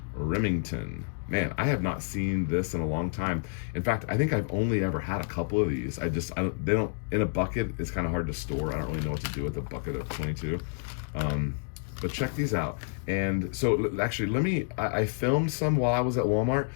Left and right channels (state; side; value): silent; right; digital silence